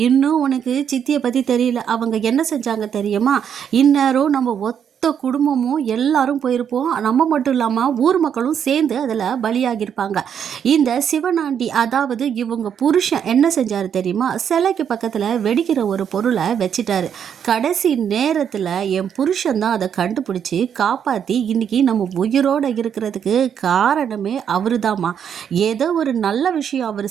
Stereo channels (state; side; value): quieter; left; 8.3 dB